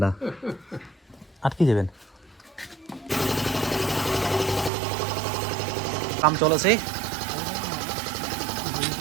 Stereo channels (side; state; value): left; drops out; at 4.7 s